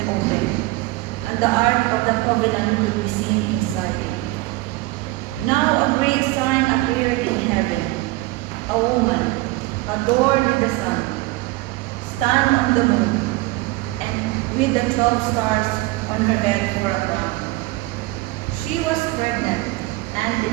opened, and the ark of the covenant could be seen inside it. Now a great sign appeared in heaven, a woman, adorned with the sun, stand on the moon, and with the 12 stars on her head for a crown. She was pregnant and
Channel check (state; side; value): quieter; left; 20.4 dB